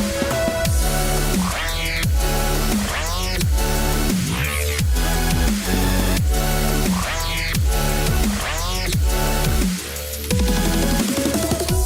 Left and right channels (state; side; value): identical; both; correlation 1.00